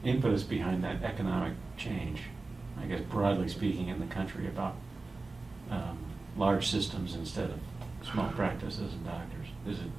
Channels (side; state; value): left; quieter; 3.5 dB